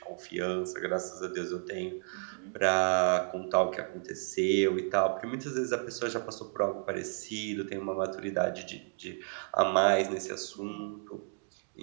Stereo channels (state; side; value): silent; left; digital silence